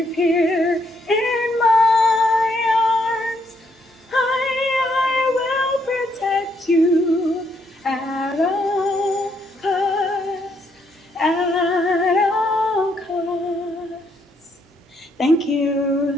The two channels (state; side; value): normal; both; correlation 0.74